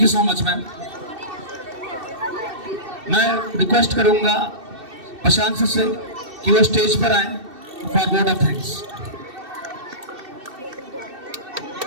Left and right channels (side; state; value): left; late; 2.7 ms